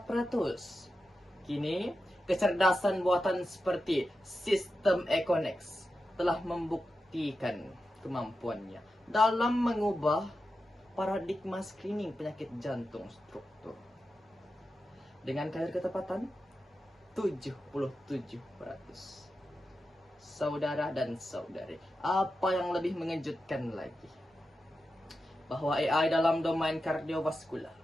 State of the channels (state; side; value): normal; both; correlation 0.90